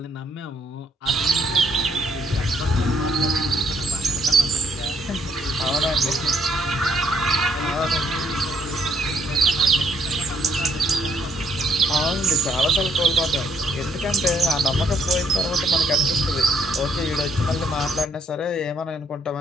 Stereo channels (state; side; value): normal; both; correlation 0.69